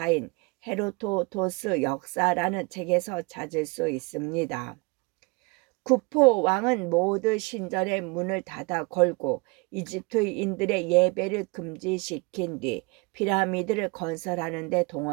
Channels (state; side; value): quieter; left; 28.5 dB